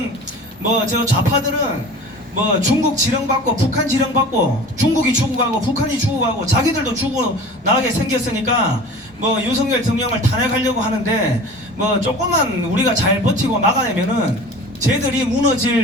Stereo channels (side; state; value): both; normal; correlation 0.39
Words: 저 좌파들은 중국 지령받고 북한 지령받고 중국이 죽어가고 북한이 죽어가고 자기들도 죽어나가게 생겼으니까 윤석열 대통령을 탄핵하려고 하는데 조금만 우리가 잘 버티고 막아내면은 쟤들이